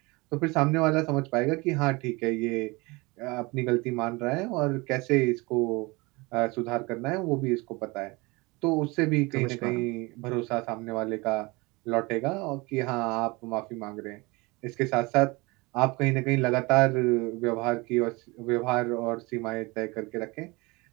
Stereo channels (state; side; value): quieter; left; 24.9 dB